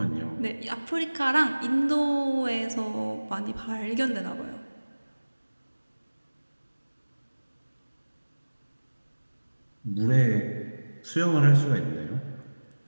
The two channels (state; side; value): inverted; both; correlation -1.00